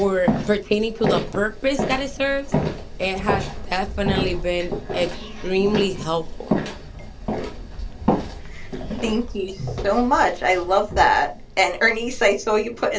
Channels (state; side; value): identical; both; correlation 1.00